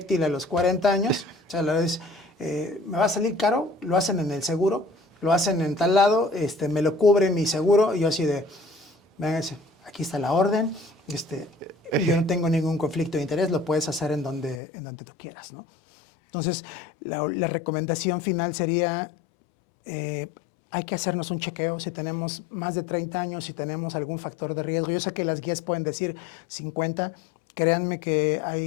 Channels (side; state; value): right; drops out; at 14.6 s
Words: a los 40 años, o sea, la verdad es, me va a salir caro, lo hacen en el seguro, lo hacen en tal lado, me lo cubre mi seguro, y yo así de, véngase, aquí está la orden, yo no tengo ningún conflicto de interés, lo puedes hacer en donde tú quieras, ¿no? Entonces, la recomendación final sería, hay que hacernos un chequeo si tenemos más de 30 años, si tenemos algún factor de riesgo. Yo sé que las guías pueden decir 50, créanme